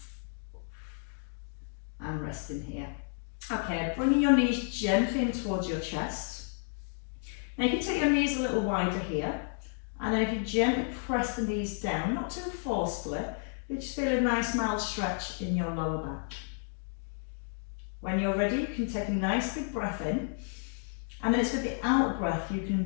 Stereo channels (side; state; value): right; silent; 57 dB below the other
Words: And resting here. Okay, bringing your knees gently in towards your chest. Now you can take your knees a little wider here. And then if you gently press the knees down, not too forcefully, but just feel a nice mild stretch in your lower back. When you're ready, you can take a nice big breath in. And then it's with the out breath you